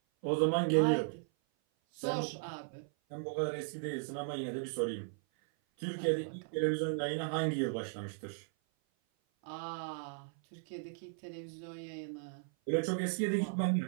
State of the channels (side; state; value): left; silent; 54 dB below the other